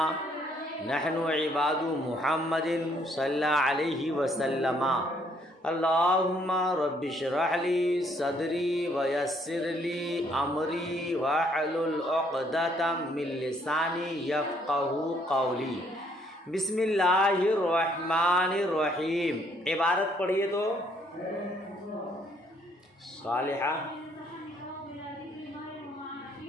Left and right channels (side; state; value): both; normal; correlation 0.67